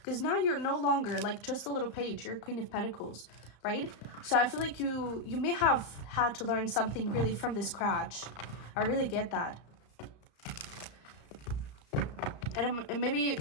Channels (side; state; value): right; late; 34 ms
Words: Because now you're no longer like just a little page. You're Queen of Pentacles. right? So I feel like you may have had to learn something really from this scratch. I really get that. And maybe